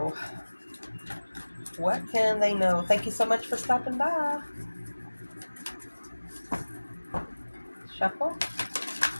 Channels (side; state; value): both; inverted; correlation -1.00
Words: What can they know? Thank you so much for stopping by. Shuffle.